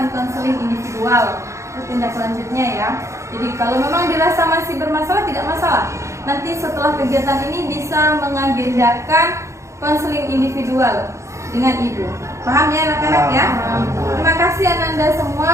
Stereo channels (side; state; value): left; late; 0.14 ms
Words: konseling individual. Itu tindak lanjutnya ya. Jadi kalau memang dirasa masih bermasalah, tidak masalah. Nanti setelah kegiatan ini bisa mengagendakan konseling individual dengan Ibu. Paham ya anak-anak ya? Terima kasih Ananda semua